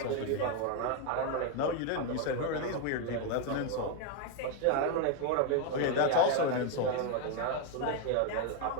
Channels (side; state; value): both; different; correlation 0.01